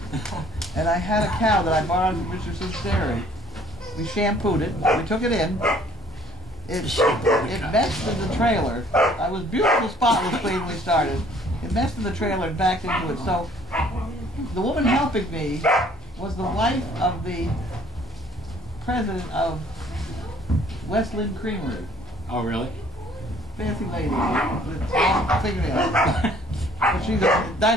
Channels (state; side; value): normal; both; correlation 0.57